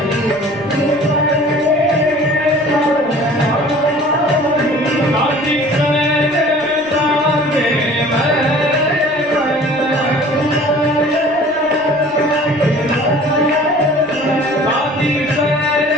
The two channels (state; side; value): noise; right; rumble, 27 dB below the sound